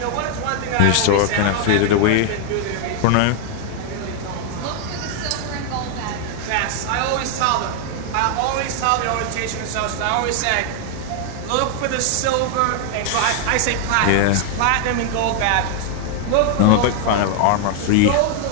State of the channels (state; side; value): different; both; correlation 0.00